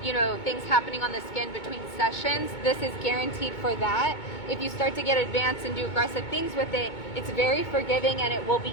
things happening on the skin between sessions. This is guaranteed for that. If you start to get advanced and do aggressive things with it, it's very forgiving and it will be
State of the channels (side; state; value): right; late; 2.2 ms